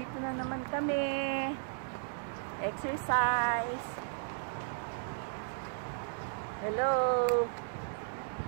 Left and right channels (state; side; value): silent; left; digital silence